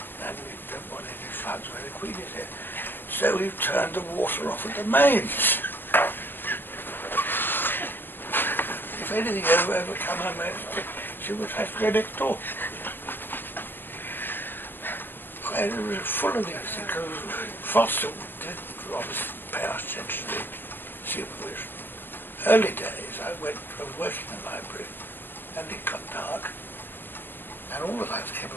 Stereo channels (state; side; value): late; right; 0.096 ms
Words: and we don't want any floods where the Queen is here. So we've turned the water off at the mains. If anything overcome her majesty, she would have to go next door. And it was full of these, because Foster didn't obviously pay much attention to the supervision. Early days, I was working in the library, and it got dark, and all the lights came